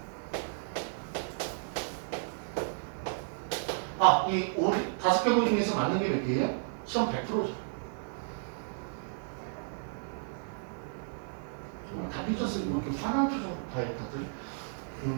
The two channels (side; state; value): left; silent; 56 dB below the other